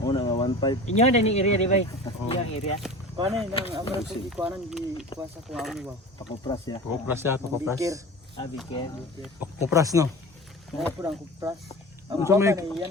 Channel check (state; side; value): normal; both; correlation 0.36